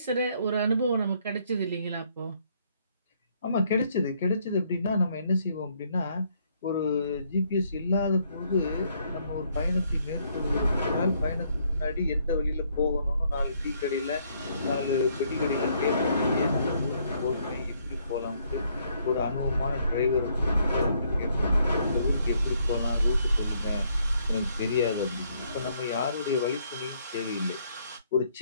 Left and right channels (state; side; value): inverted; both; correlation -0.69